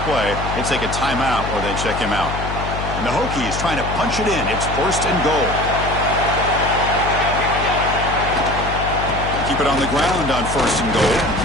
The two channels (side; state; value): left; noise; hum, 6 dB below the sound